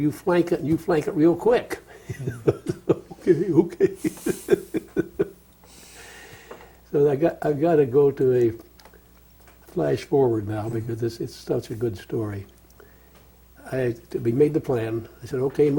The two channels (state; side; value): identical; both; correlation 1.00